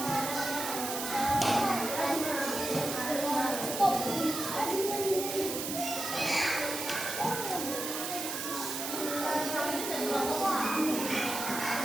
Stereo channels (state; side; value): noise; right; hiss, 4 dB below the sound